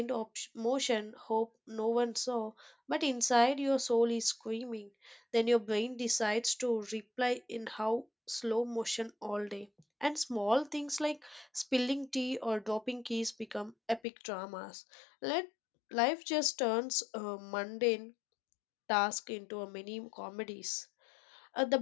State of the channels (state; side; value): drops out; right; at 14.0 s